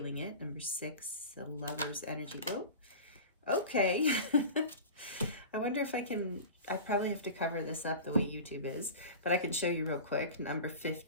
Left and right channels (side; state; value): both; inverted; correlation -0.33